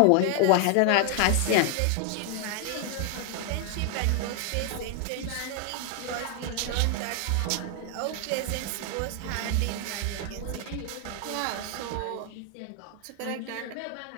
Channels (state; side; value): different; both; correlation 0.00